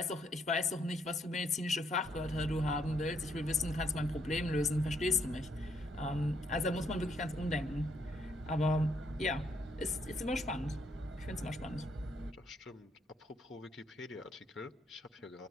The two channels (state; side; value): normal; both; correlation 0.72